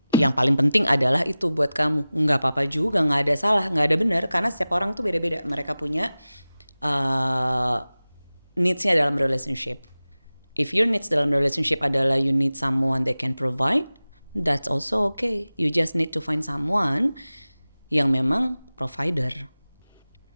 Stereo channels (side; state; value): both; inverted; correlation -0.96